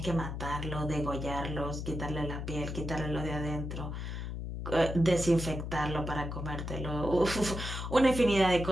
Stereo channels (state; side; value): noise; left; hum, 5 dB below the sound